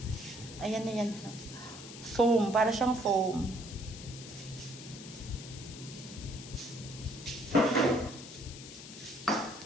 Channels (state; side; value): noise; left; hiss, 13 dB below the sound